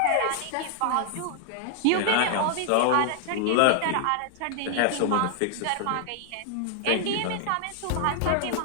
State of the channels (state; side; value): different; both; correlation 0.00